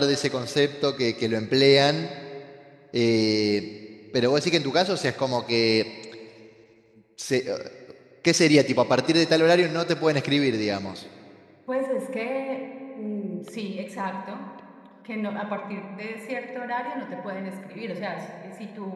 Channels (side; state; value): both; identical; correlation 1.00